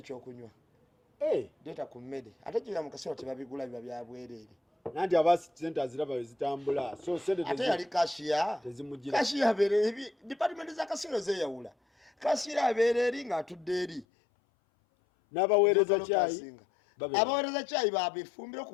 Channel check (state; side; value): drops out; right; at 14.1 s